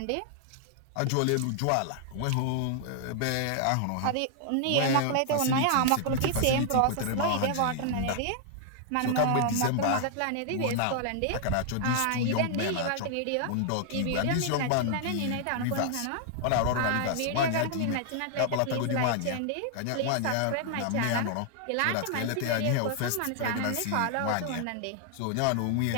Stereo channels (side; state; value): both; different; correlation 0.00